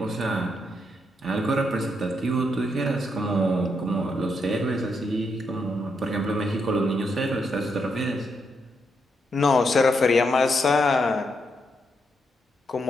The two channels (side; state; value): both; normal; correlation 0.79